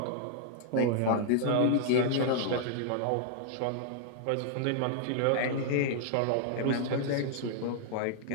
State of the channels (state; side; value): different; both; correlation -0.01